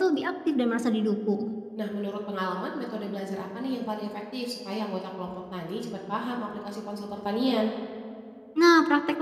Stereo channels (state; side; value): identical; both; correlation 1.00